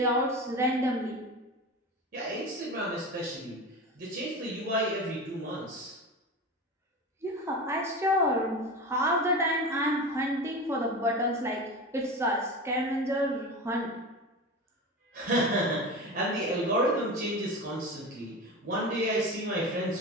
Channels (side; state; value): both; normal; correlation 0.28